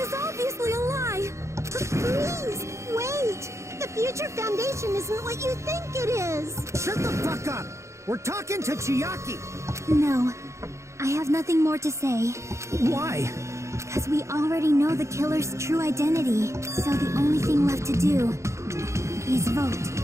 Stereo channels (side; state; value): left; late; 0.14 ms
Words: obviously a lie. Please, wait! The Future Foundation isn't what you think it is! Shut the fuck up! We're talking to Chiaki! No, I have nothing more to say. Why? Because we already know the killer's true identity. So the only thing left to do is vote.